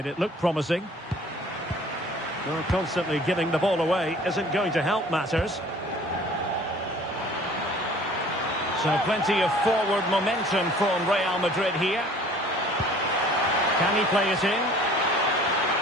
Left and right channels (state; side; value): normal; both; correlation 0.50